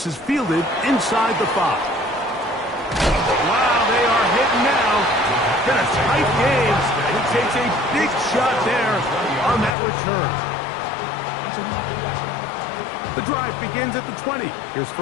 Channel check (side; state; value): right; drops out; at 9.7 s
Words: is fielded inside the 5. Wow, they are hitting now. Been a tight game. He takes a big shot there on that return. The drive begins at the 20. Here's